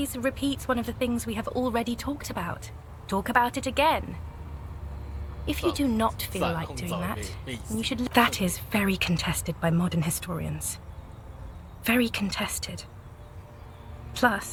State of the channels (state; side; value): identical; both; correlation 1.00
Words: repeat one of the things we have already talked about. Talk about it again. If you do not feel like doing that, you should... That is very contested by modern historians. Very contested.